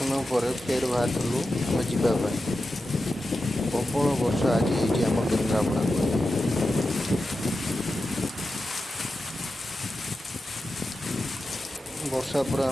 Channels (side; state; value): both; normal; correlation 0.91